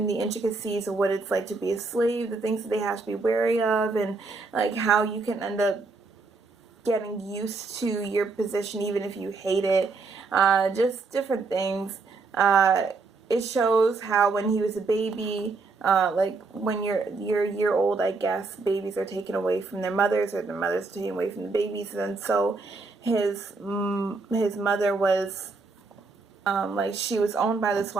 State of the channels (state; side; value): quieter; left; 4.0 dB